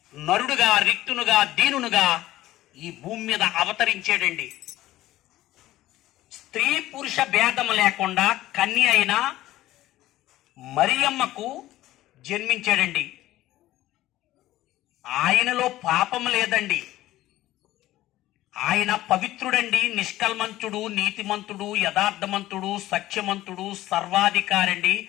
నరుడుగా, రిక్తునుగా, దీనునుగా ఈ భూమి మీద అవతరించాడండి. స్త్రీ పురుష భేదం లేకుండా కన్య అయిన మరియమ్మకు జన్మించాడండి. ఆయనలో పాపం లేదండి. ఆయన పవిత్రుడండి, నిష్కల్మంతుడు, నీతిమంతుడు, యథార్థమంతుడు, సత్యమంతుడు, సర్వాధికారండి,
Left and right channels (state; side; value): quieter; right; 15.5 dB